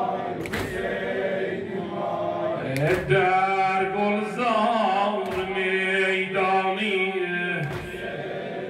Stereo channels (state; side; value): identical; both; correlation 1.00